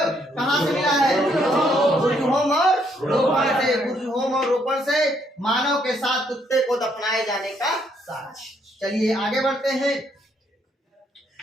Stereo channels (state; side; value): normal; both; correlation 0.71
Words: कहाँ से मिला है? बुर्जहोम और रोपण से। बुर्जहोम और रोपण से मानव के साथ कुत्ते को दफनाए जाने का साक्ष्य। चलिए आगे बढ़ते हैं।